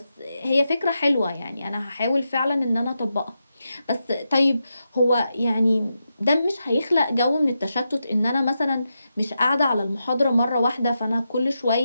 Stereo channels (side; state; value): both; inverted; correlation -0.87